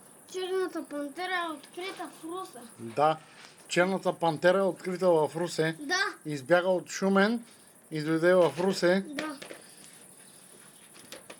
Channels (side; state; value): both; identical; correlation 1.00